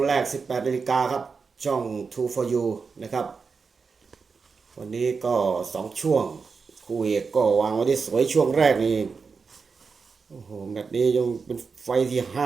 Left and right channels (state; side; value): quieter; left; 5.1 dB